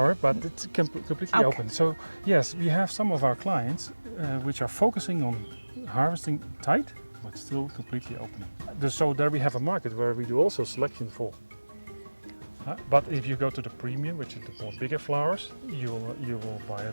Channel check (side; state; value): both; inverted; correlation -1.00